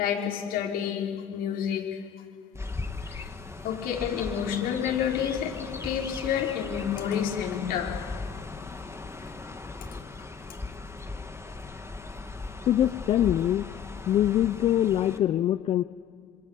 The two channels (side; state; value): right; quieter; 9.2 dB